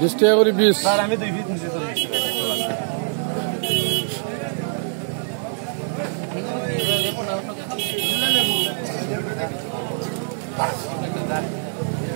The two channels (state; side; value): silent; left; 60 dB below the other